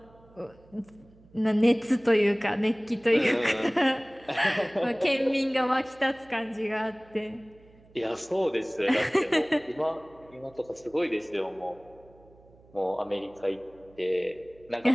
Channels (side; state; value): right; noise; hum, 27 dB below the sound